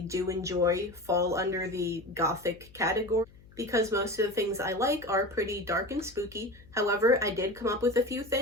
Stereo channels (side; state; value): left; noise; hum, 24 dB below the sound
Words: do enjoy fall under the gothic category, because most of the things I like are pretty dark and spooky. However, I did come up with a few